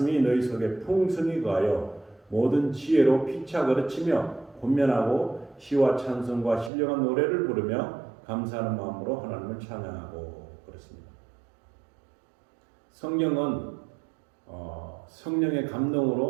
너희 속에 풍성히 거하여 모든 지혜로 피차 거르치며 권면하고 시와 찬송과 신령한 노래를 부르며 감사하는 마음으로 하나님을 찬양하고 그렇습니다. 성경은 성령의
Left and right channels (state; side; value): drops out; left; at 6.7 s